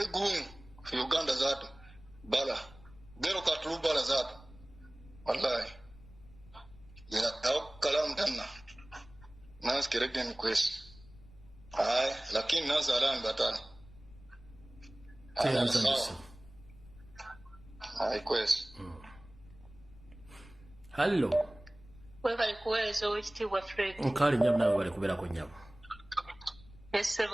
gumu fi Uganda zatu. Bala. Dero katulu bala zatu. Wallahi. Ya kalamu tena. Nas keregen kwesi. Lakini nazalan batani. Kwesi. Hello. Webali kuweereza owekitiibwa Fred. Nkali nyamu nawe bali kubeerako nyamu.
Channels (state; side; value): noise; left; rumble, 21 dB below the sound